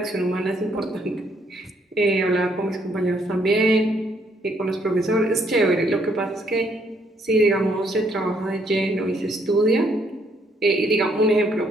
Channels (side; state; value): both; normal; correlation 0.69